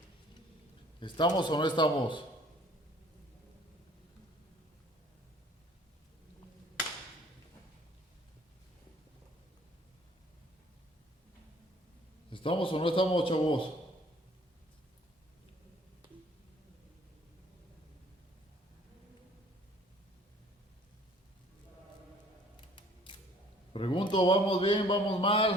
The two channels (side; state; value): both; normal; correlation 0.55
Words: ¿Estamos o no estamos? ¿Estamos o no estamos, chavos? Pregunto, ¿vamos bien? ¿Vamos